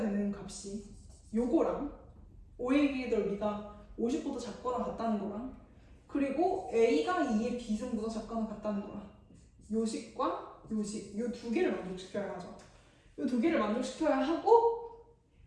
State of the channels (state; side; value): identical; both; correlation 1.00